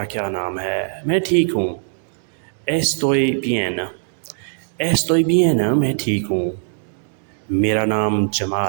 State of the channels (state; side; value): silent; left; digital silence